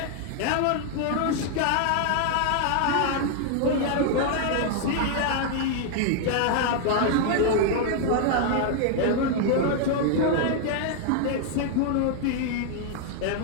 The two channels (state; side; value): different; both; correlation 0.00